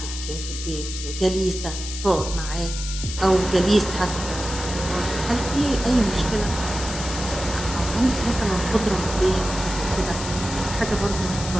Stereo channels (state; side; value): noise; left; hiss, 8 dB below the sound